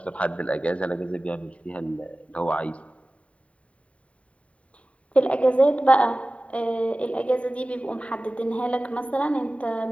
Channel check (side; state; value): right; late; 0.065 ms